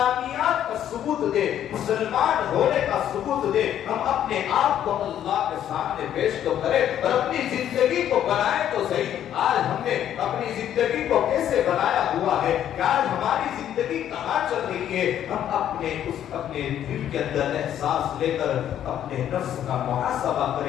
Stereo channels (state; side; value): quieter; right; 10.6 dB